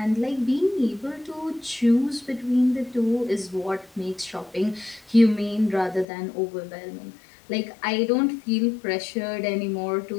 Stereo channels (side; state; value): right; drops out; at 6.1 s